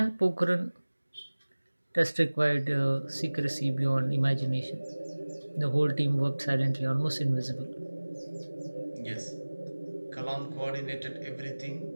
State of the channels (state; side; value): inverted; both; correlation -1.00